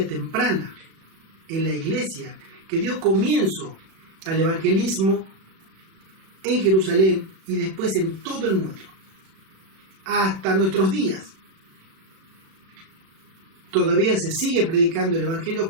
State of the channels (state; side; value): late; left; 36 ms